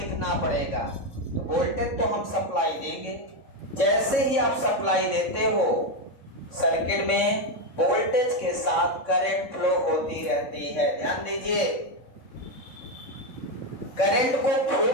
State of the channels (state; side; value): late; right; 3.6 ms